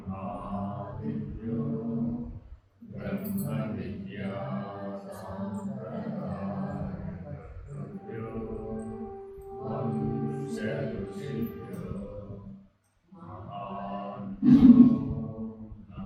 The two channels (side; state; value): both; identical; correlation 1.00